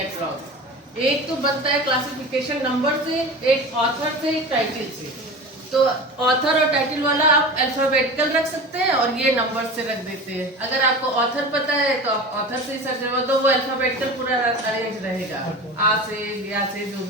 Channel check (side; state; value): both; normal; correlation 0.32